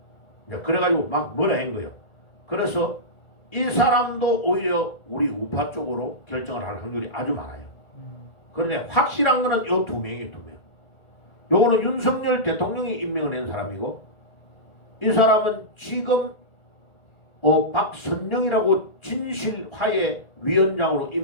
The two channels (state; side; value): late; right; 1.7 ms